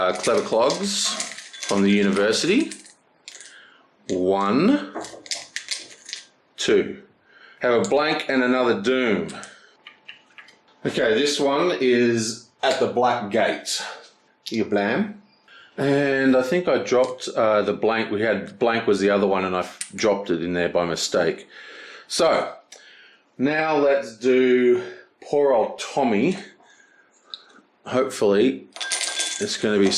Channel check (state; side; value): identical; both; correlation 1.00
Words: Clogs from the University. 1, 2. Have a blank and another doom. Okay, this one is at the Black Gate. You blam. And I think I dropped the blank. We had blank was the other one, and I dropped it in there by mistake. So now let's do poor old Tommy. Hopefully it's going to be